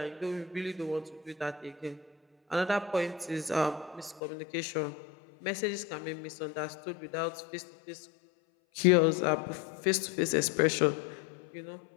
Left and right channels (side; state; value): right; drops out; at 4.2 s